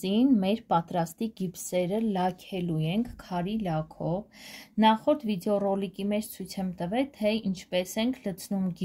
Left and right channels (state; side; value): identical; both; correlation 1.00